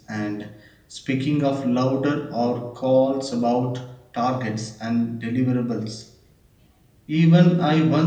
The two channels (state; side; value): identical; both; correlation 1.00